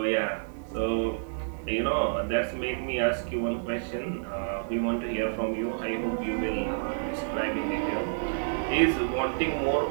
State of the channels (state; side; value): silent; left; digital silence